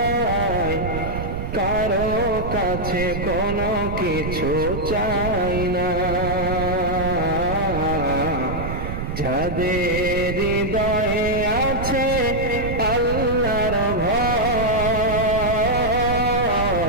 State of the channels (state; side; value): noise; right; rumble, 5 dB below the sound